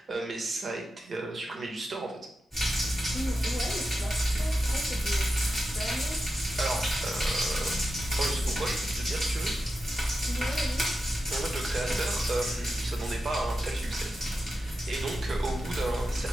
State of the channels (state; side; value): normal; both; correlation 0.90